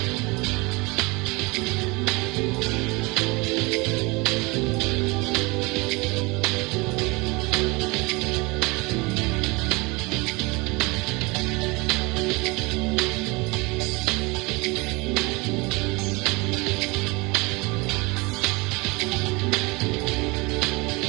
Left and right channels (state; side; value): quieter; left; 25.8 dB